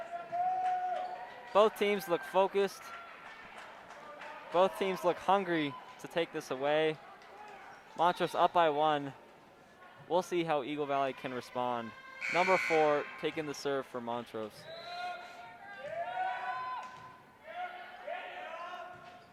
Both teams look focused. Both teams look hungry to take this away. Montrose up by 1. We'll see how Eagle Valley can respond. Number 4 taking the serve for Montrose.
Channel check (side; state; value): both; identical; correlation 1.00